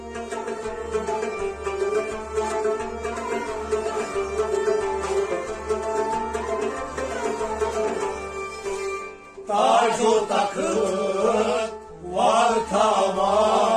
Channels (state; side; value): identical; both; correlation 1.00